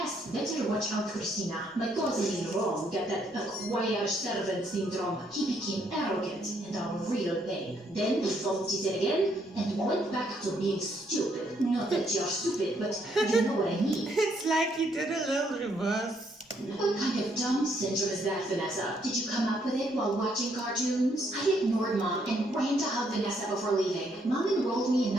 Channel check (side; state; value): both; normal; correlation 0.72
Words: Better watch out, Christina. My cousin in Rome got that acquired servant syndrome. He became arrogant and a real pain. Then he bumped his head again, and he went back to being stupid. Not that you're stupid, but you know what I mean. It's like he did a little reverse. What kind of dumb syndrome is that, Vanessa? Did you come up with it while watching cartoons? I ignored Mom and ran to hug Vanessa before leaving. Mom enrolled me in